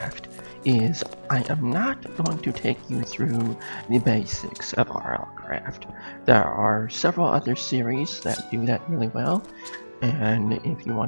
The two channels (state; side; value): inverted; both; correlation -1.00